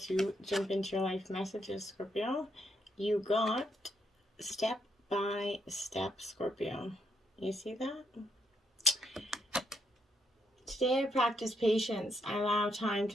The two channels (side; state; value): both; normal; correlation 0.76